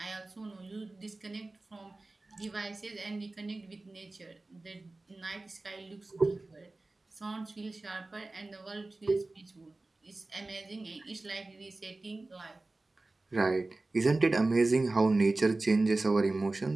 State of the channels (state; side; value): quieter; left; 3.1 dB